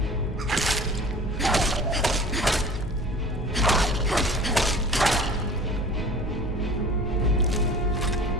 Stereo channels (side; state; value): both; normal; correlation 0.42